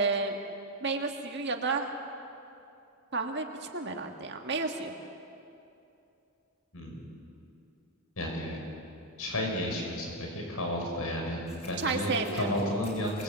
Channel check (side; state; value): both; normal; correlation 0.01